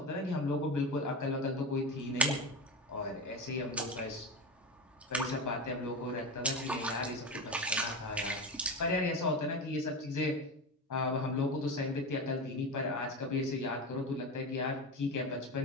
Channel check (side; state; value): both; normal; correlation 0.21